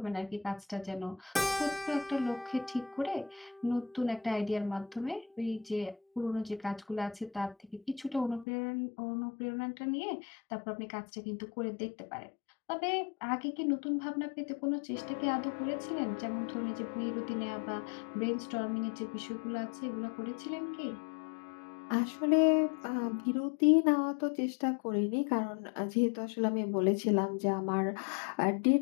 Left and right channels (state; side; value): drops out; right; at 8.5 s